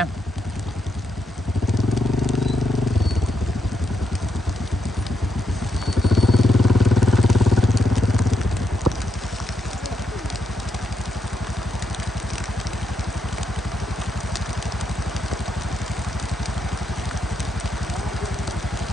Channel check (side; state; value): both; normal; correlation 0.80